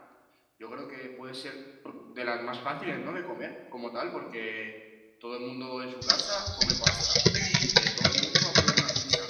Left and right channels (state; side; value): identical; both; correlation 1.00